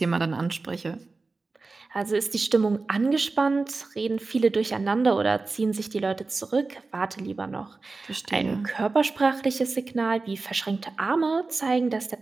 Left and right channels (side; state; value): left; quieter; 3.8 dB